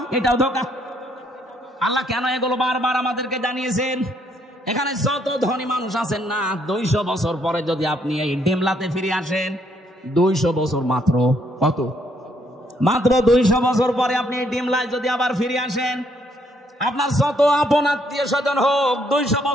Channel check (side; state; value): both; normal; correlation 0.70